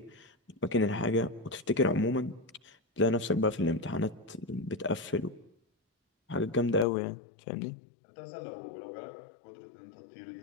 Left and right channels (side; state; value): right; drops out; at 6.9 s